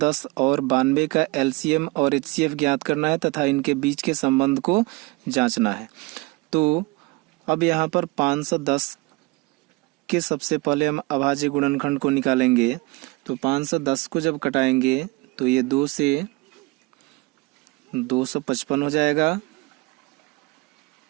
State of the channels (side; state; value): left; quieter; 24.5 dB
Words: और 92 का एलसीएम और एचसीएफ ज्ञात करना है तथा इनके बीच के संबंध को जांचना है। तो अब यहाँ पर 510 के सबसे पहले हम अभाज्य गुणनखंड को निकालेंगे। तो 510 को जब कटाएंगे तो ये 2 से 255 हो जाएगा,